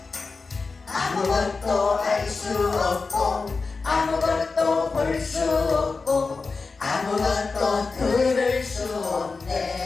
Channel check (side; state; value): right; quieter; 4.3 dB